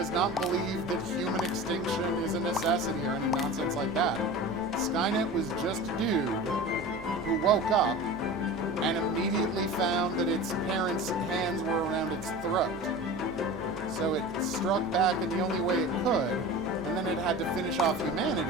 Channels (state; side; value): normal; both; correlation 0.34